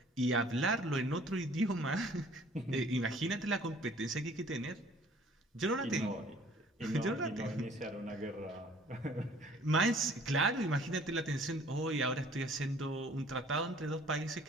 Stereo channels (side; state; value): both; normal; correlation 0.54